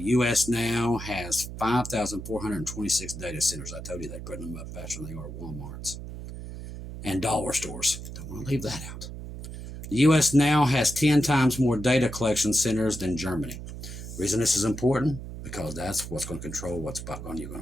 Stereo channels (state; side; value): noise; right; hum, 10 dB below the sound